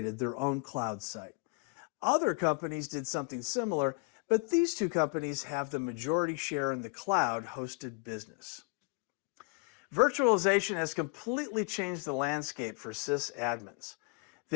their own cloud site. Other companies did something similar, but these two companies have the majority share in the cloud-hosted business. Virtualization has completely changed the landscape for sysadmins.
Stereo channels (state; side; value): quieter; right; 33.8 dB